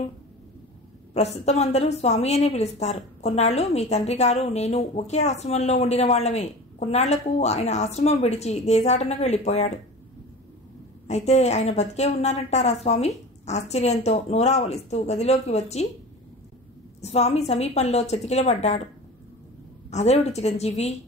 ప్రస్తుతం అందరూ స్వామి అనే పిలుస్తారు. కొన్నాళ్ళు మీ తండ్రి గారు నేను ఒకే ఆశ్రమంలో ఉండిన వాళ్లమే. కొన్నాళ్లకు ఆయన ఆశ్రమం విడిచి దేశాటనకు వెళ్ళిపోయాడు. అయితే ఆయన బతికే ఉన్నారంటారా స్వామి? ఆశ్చర్యంతో నోరావలిస్తూ గదిలోకి వచ్చి స్వామి సమీపంలో చతికిలబడ్డాడు. అదేవిటి చిరంజీవి,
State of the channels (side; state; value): both; normal; correlation 0.35